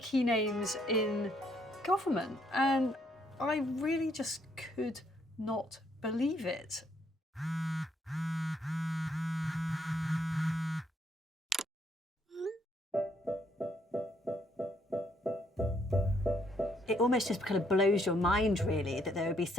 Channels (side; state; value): both; normal; correlation 0.70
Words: names in government, and I really just could not believe it. It almost just kind of blows your mind, really, that there would be